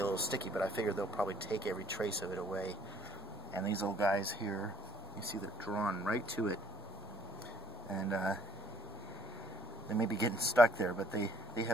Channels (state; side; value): normal; both; correlation 0.62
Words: little sticky, but I figured they'll probably take every trace of it away. And these little guys here, you see they're drawn right to it. And they may be getting stuck there, but they